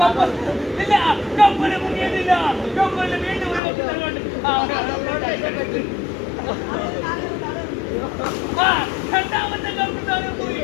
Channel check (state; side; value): drops out; right; at 3.6 s